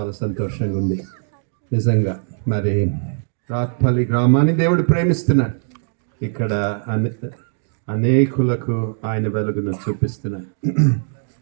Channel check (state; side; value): silent; left; digital silence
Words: సంతోషంగా ఉంది నిజంగా. మరి రాత్పల్లి గ్రామాన్ని దేవుడు ప్రేమిస్తున్నాడు. ఇక్కడ అనేకులకు ఆయన వెలుగును చూపిస్తున్నాడు.